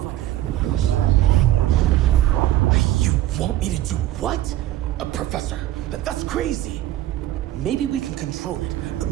You want me to do what? Professor, that's crazy. Maybe we can control it,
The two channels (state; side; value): quieter; left; 13.9 dB